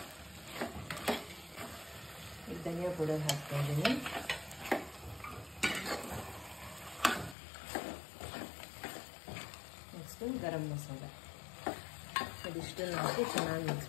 ಈಗ ಧನಿಯಾ ಪೌಡರ್ ಹಾಕ್ತಾ ಇದ್ದೀನಿ. ನೆಕ್ಸ್ಟು ಗರಂ ಮಸಾಲ, ಇದಿಷ್ಟನ್ನು ಹಾಕಿ ಚೆನ್ನಾಗಿ ಮಿಕ್ಸ್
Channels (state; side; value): drops out; right; at 7.4 s